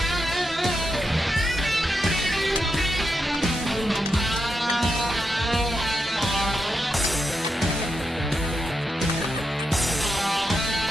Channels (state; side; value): normal; both; correlation 0.85